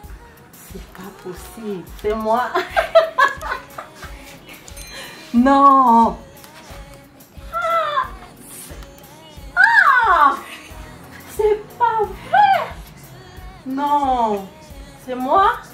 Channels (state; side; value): identical; both; correlation 1.00